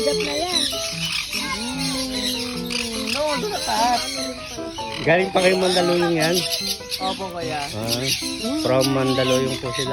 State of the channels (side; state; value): both; identical; correlation 1.00